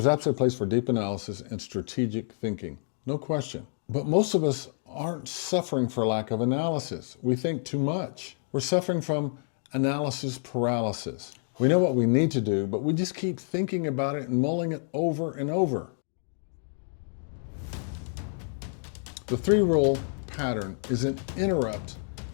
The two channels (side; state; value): right; silent; 59 dB below the other